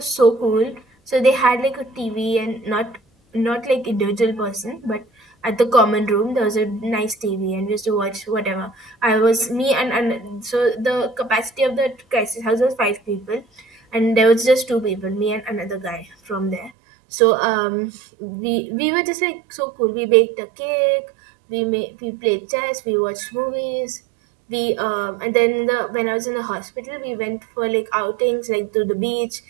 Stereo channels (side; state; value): left; drops out; at 16.7 s